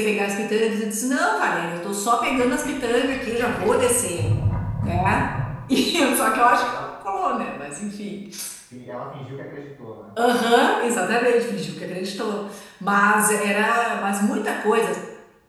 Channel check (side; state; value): both; identical; correlation 1.00